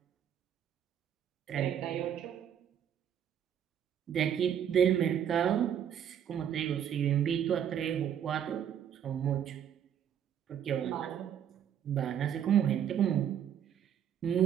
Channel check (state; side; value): quieter; left; 9.3 dB